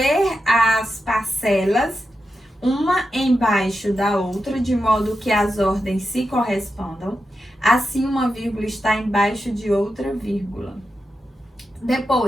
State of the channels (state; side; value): normal; both; correlation 0.89